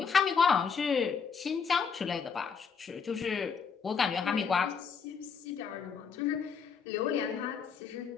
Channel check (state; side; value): quieter; right; 6.1 dB